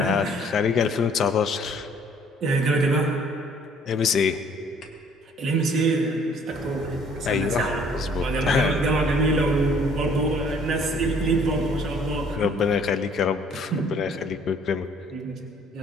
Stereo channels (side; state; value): both; normal; correlation 0.58